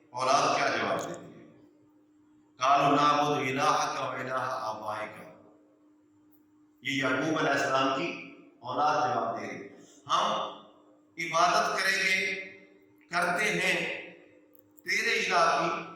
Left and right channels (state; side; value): identical; both; correlation 1.00